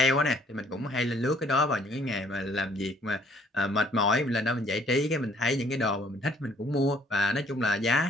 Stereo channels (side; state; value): both; normal; correlation 0.61